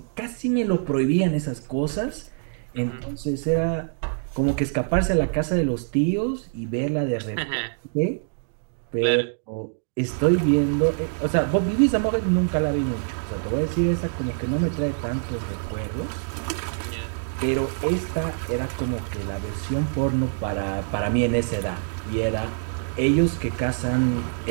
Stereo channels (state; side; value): silent; left; digital silence